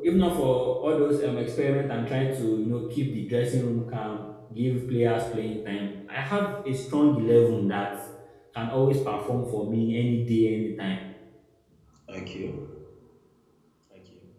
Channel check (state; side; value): identical; both; correlation 1.00